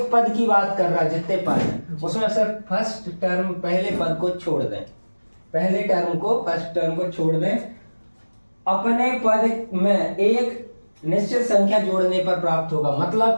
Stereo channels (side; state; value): both; inverted; correlation -1.00